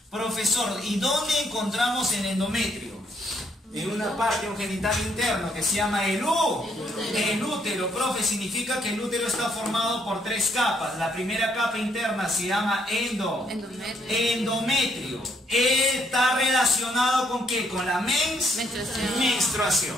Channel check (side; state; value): both; normal; correlation 0.71